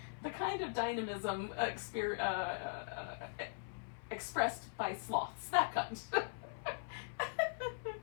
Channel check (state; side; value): silent; right; 51 dB below the other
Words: The kind of dynamism expressed by sloths, that kind.